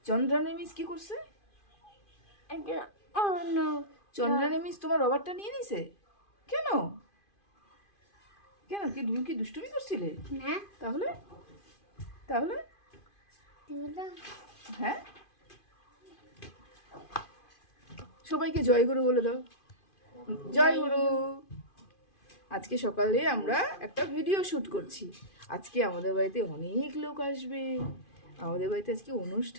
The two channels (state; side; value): late; right; 2.5 ms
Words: চন্দ্রানী মিস কি করছে? চন্দ্রানী মিস তোমার রবারটা নিয়ে নিছে কেন? কেন কি তুমি কি দুষ্টুমি করছিলে? না। তাহলে তাহলে হ্যাঁ, সবাইকে জয় গুরু বলে দাও। জয় গুরু। আজকে সকালে আমরা একটা ভিডিও শুট করছি। আজকে আমাদের বাড়িতে অনেক লোক আসবে। আমাদের বাড়িতে আজকে